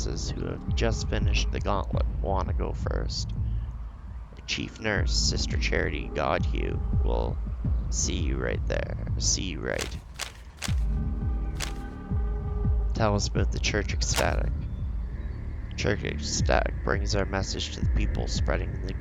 who have just finished the gauntlet want to go first. The chief nurse, Sister Charity Godhue, will see you right there. See you right. Tell us about the church ecstatic. Church ecstatic brings our message to the people, spreading the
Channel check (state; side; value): identical; both; correlation 1.00